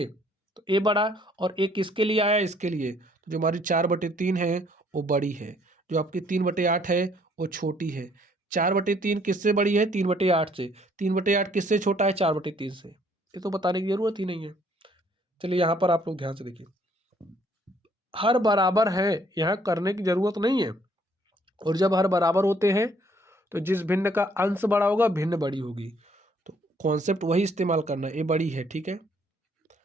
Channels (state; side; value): normal; both; correlation 0.64